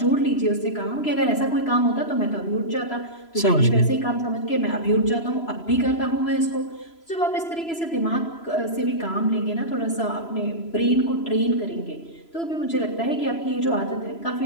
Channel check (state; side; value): late; right; 3.0 ms